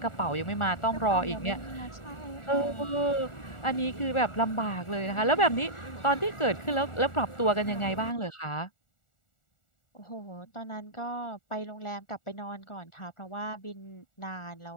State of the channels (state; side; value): late; right; 1.4 ms